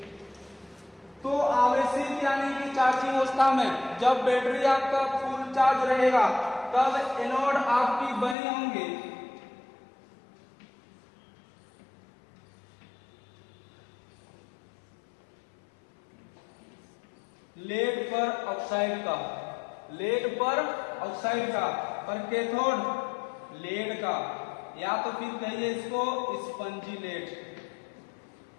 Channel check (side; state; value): right; drops out; at 8.3 s